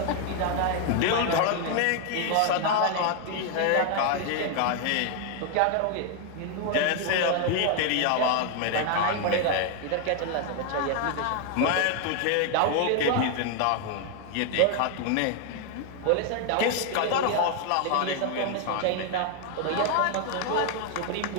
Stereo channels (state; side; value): different; both; correlation 0.01